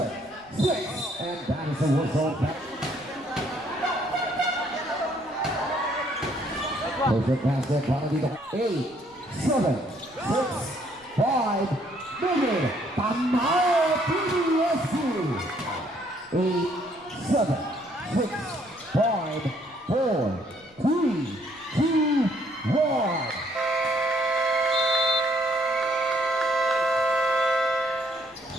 6. And that is a whistle back. Perfect basket. Para dito. 8. 7. 6. 5. Mingin. Tamayo. PDSC. 8. 7. 6. 5, 4, 3, 2, 1.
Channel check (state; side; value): noise; left; rumble, 29 dB below the sound